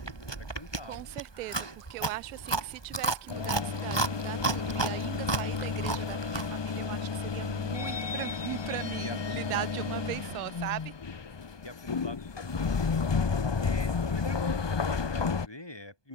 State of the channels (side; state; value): right; late; 1.2 ms